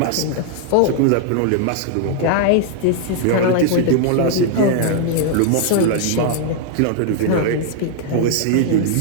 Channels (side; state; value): both; different; correlation 0.00